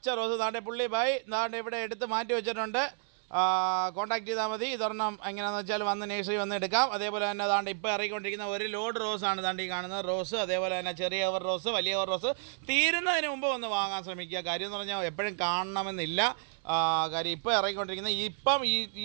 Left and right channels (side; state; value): left; silent; 57 dB below the other